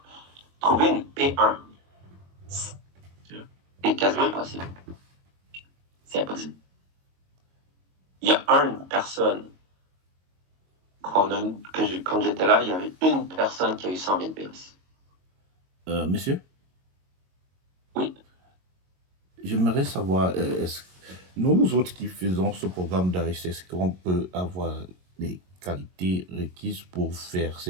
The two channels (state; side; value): late; left; 22 ms